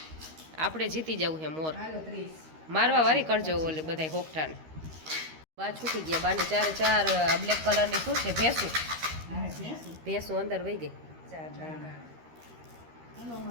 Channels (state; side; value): late; left; 13 ms